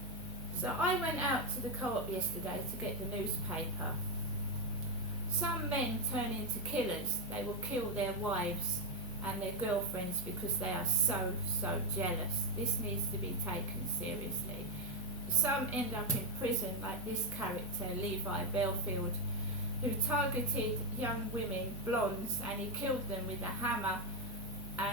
So I went out to the co-op yesterday to get the newspaper. Some men turn into killers. They will kill their wives and their girlfriends because they are so jealous. This needs to be taken seriously. Some end up in prison, like this character, Levi Belfield, who targeted young women, blondes, and he killed them with a hammer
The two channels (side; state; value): both; normal; correlation 0.05